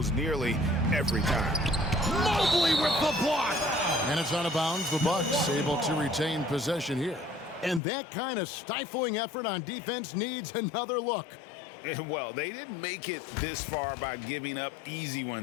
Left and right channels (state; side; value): drops out; right; at 7.8 s